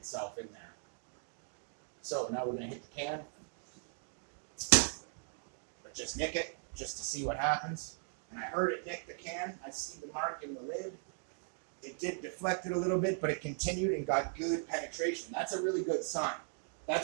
in there. So now we're going to hit the can. But just nick it, just to see what happens. And I heard it nick the can. I see the mark in the lid. It did deflect it a little bit, but it continued and got good penetration. That's a really good sign.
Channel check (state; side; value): silent; left; 52 dB below the other